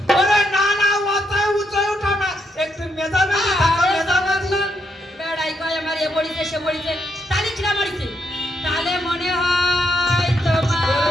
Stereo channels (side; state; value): both; normal; correlation 0.79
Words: ওরে না না মাথায় উঁচাই ওঠা না একটু মেজামেজি থাকা মেজামেজি বেড়াই কয় আমার এ মরিছে সে মরিছে তাহলে খিদা মরিছে তাহলে মনে হয় তোমার